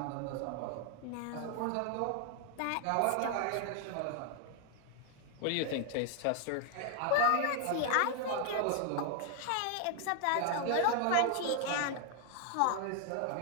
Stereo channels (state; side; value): different; both; correlation 0.00